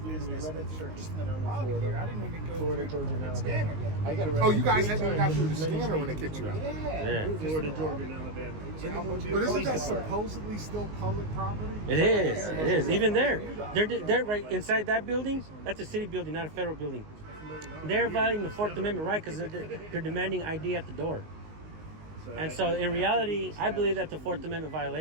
and it's just in the lobby here. I didn't even go through the scanner yet. Oh, you guys hadn't even got through the scanner when they kicked you out. Yeah. Florida, Georgia, and Alabama. But isn't that supposedly still public property? It is. Even there. They're right inside that building. That's a city building, not a federal building. They're violating the Fourth Amendment right because they're demanding ID at the door. And so in reality, I believe that's a Fourth Amendment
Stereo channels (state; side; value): late; left; 19 ms